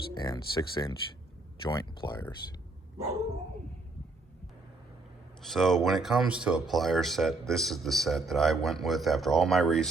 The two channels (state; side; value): quieter; left; 3.3 dB